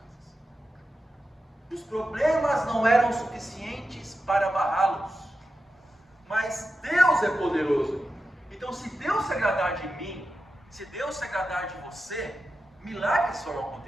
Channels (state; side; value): normal; both; correlation 0.90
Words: Os problemas não eram suficientes para barrá-los, mas Deus é poderoso. Então, se Deus se agradar de mim, se Deus se agradar de você, milagres vão